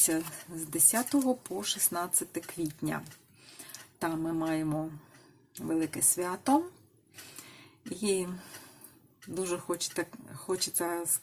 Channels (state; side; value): identical; both; correlation 1.00